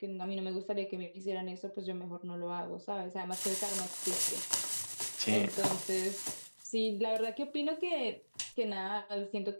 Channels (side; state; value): both; inverted; correlation -1.00